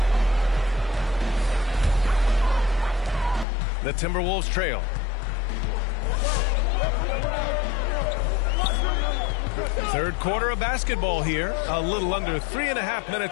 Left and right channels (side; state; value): right; drops out; at 3.5 s